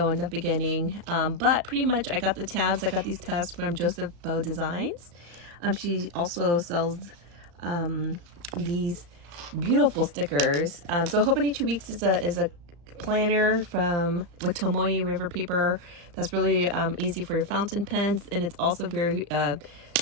in the beginning, but pretty much I got the tabs. I got these tabs from JosephineBowDesigns. She also sells these beautiful stickers. So Hobonichi Weeks is a planner with Tomoe River paper that's really easy for your fountain pens, and it's also very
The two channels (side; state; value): left; late; 35 ms